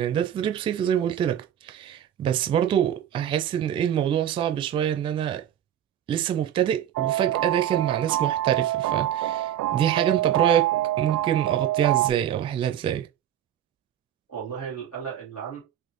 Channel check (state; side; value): quieter; left; 10.6 dB